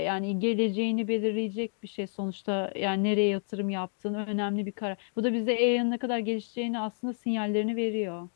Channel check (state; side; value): silent; right; digital silence